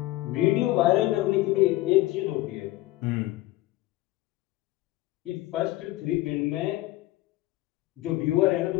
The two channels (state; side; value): quieter; right; 17.6 dB